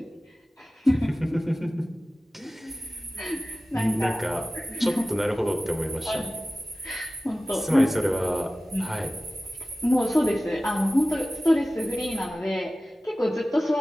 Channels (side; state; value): both; normal; correlation 0.96